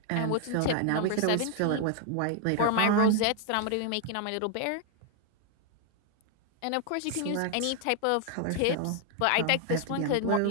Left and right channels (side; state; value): both; different; correlation 0.00